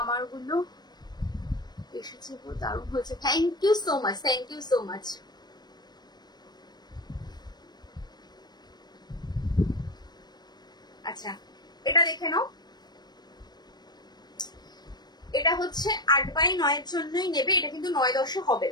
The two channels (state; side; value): late; right; 0.20 ms